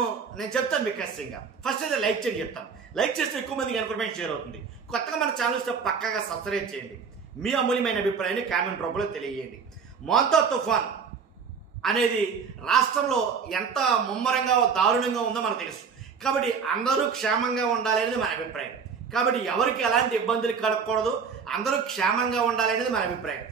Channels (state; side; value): quieter; left; 6.0 dB